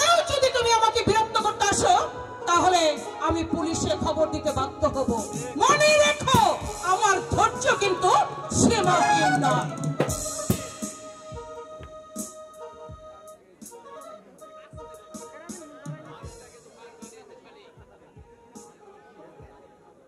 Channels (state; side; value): identical; both; correlation 1.00